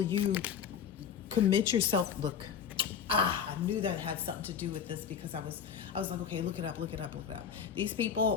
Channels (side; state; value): right; quieter; 7.6 dB